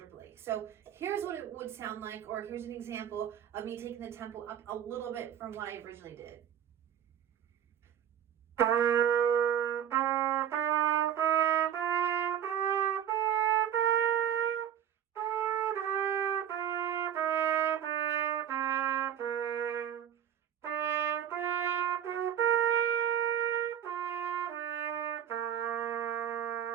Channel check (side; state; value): left; quieter; 9.7 dB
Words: So here's what it would sound like, or here's an example of me taking the tempo up a little bit from what I originally did.